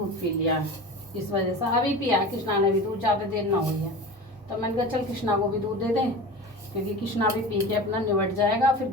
पी लिया, इस वजह से अभी पिया कृष्णा ने भी दूध, ज़्यादा देर ना हुई है। तो मैंने कहा चल कृष्णा को भी दूध दे दें, क्योंकि कृष्णा भी पी के अपना निबट जाएगा। फिर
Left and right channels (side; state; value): both; normal; correlation 0.33